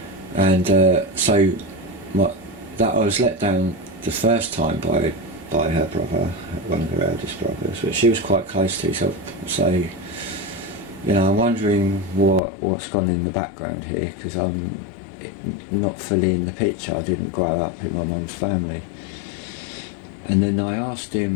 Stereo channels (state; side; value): drops out; right; at 12.4 s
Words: And I was let down the first time by her brother, one of her eldest brothers, which she was quite close to. So I'm wondering what's gone in the background here, because I'm not fully in the picture. I didn't grow up in my mum's family. And then I asked